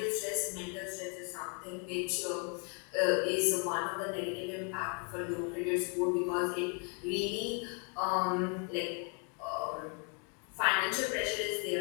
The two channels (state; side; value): quieter; right; 38.2 dB